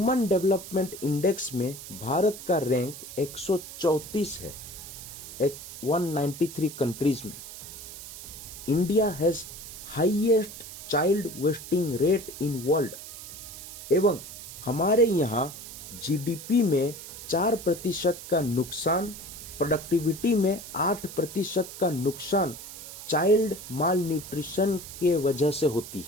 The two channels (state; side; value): noise; right; hiss, 12 dB below the sound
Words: डेवलपमेंट इंडेक्स में भारत का रैंक 134 है 193 कंट्रीज में। India has highest child wasting rate in world, एवं हमारे यहाँ जीडीपी में 4% का नुकसान, प्रोडक्टिविटी में 8% का नुकसान चाइल्ड माल न्यूट्रिशन के वजह से होती